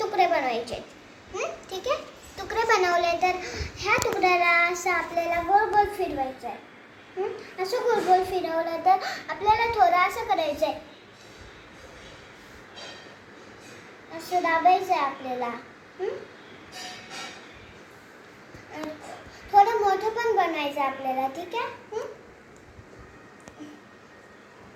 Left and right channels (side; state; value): both; identical; correlation 1.00